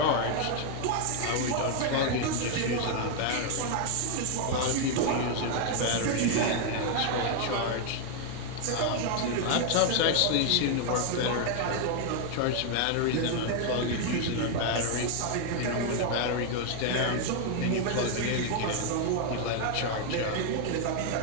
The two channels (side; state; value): both; different; correlation 0.00